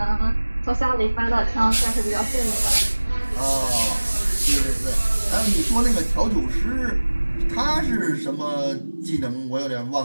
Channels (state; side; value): inverted; both; correlation -1.00